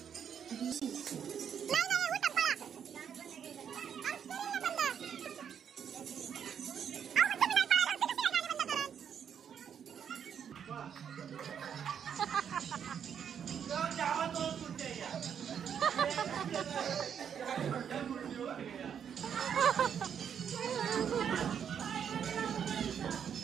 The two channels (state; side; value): quieter; left; 8.1 dB